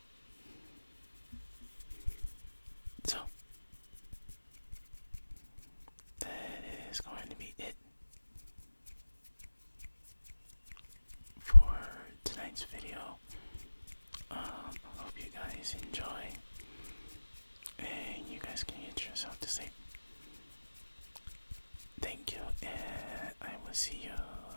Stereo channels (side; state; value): both; inverted; correlation -1.00